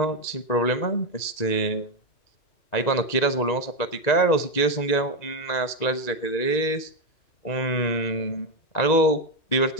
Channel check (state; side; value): late; right; 2.0 ms